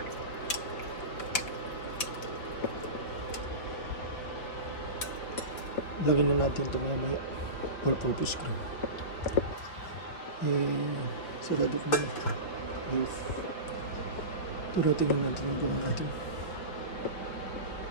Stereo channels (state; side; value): late; right; 5.6 ms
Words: Lagyan na natin ito mamaya. All-purpose cream. Sarado ko muna. Beef. Tara, tingnan natin ang gawa natin.